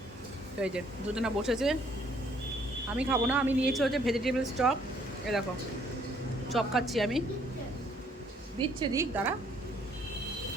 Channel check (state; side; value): normal; both; correlation 0.64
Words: তো এই যে দুজনা বসেছে, আমি খাবো না, আমি নিয়েছি হচ্ছে ভেজিটেবলস চপ। এ দেখো চপ খাচ্ছি আমি, দিচ্ছে দিক দাঁড়া,